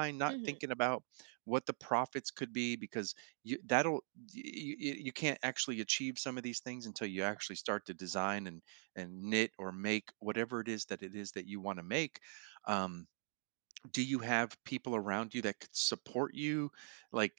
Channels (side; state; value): left; silent; digital silence